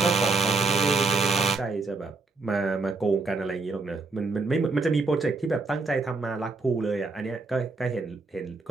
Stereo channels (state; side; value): quieter; left; 3.7 dB